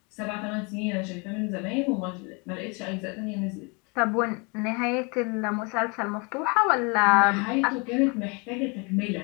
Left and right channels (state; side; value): quieter; right; 31.1 dB